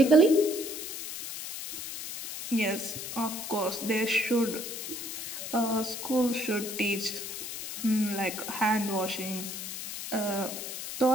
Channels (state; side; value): noise; left; hiss, 7 dB below the sound